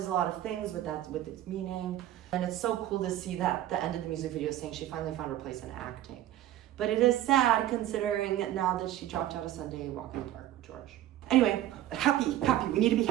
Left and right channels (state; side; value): quieter; left; 13.1 dB